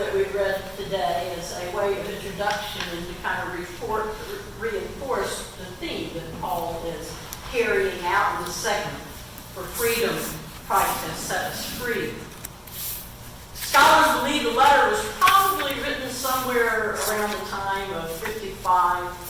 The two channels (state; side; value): identical; both; correlation 1.00